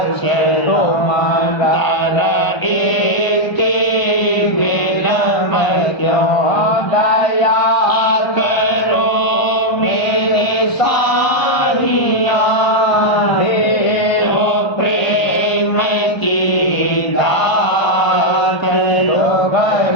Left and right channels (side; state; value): right; late; 1.3 ms